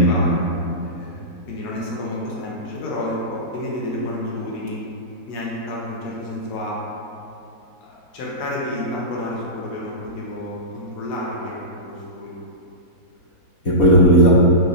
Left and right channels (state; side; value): late; right; 4.1 ms